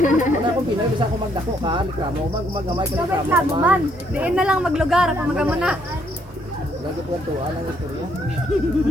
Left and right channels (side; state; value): both; normal; correlation 0.70